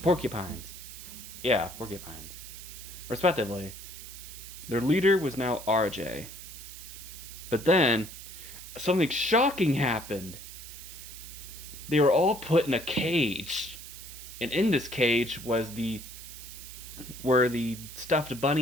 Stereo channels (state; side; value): noise; right; hiss, 13 dB below the sound